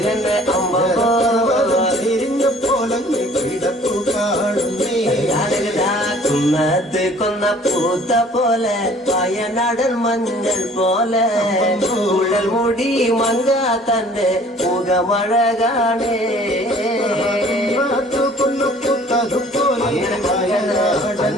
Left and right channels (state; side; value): normal; both; correlation 0.53